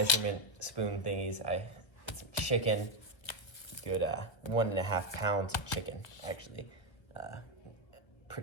spoon thingies. Some chicken, good 1.5 pounds of chicken, actually.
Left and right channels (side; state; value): right; late; 1.2 ms